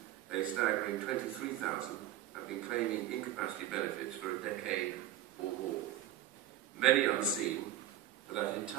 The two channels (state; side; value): quieter; left; 11.8 dB